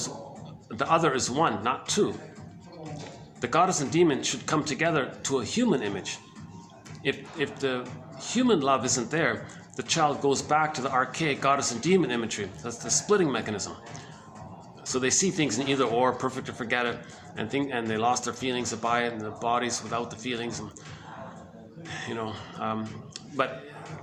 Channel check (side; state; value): both; identical; correlation 1.00